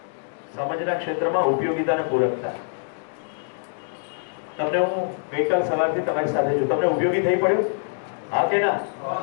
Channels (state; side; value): silent; right; digital silence